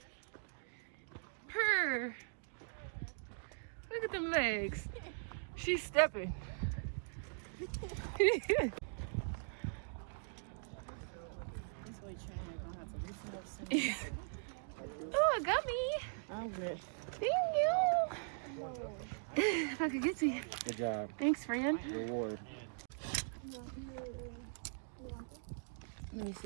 Purr. Look at them legs. She's stepping. Oh, a gummy. I'm good. Thank you. If I could get to you. Good job. Thanks, friend. Reward. Let me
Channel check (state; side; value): silent; left; digital silence